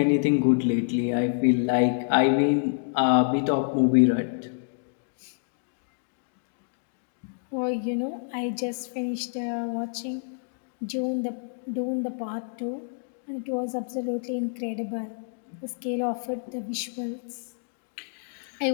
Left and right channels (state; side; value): silent; right; digital silence